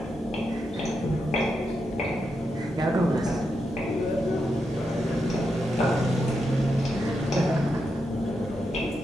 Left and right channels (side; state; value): both; normal; correlation 0.85